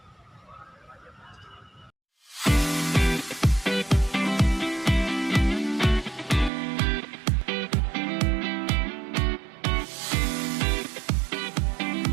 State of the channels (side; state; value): left; drops out; at 6.5 s